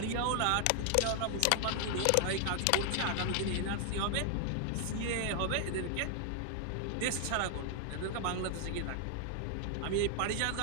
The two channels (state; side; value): different; both; correlation 0.00